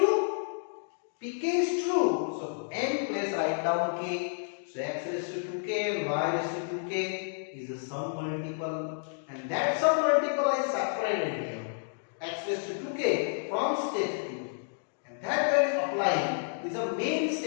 Pk is true, so n place write down k, so x raised to 2k and y raised to 2k is a sum multiple, and that sum multiple I separated here, x raised to 2k from step 2, and that value applying is a main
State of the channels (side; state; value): right; silent; digital silence